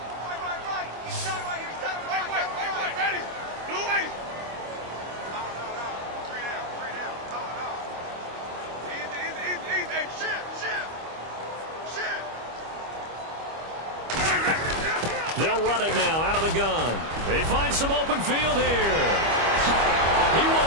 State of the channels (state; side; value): late; left; 25 ms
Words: They'll run it now out of the gun. They find some open field here. He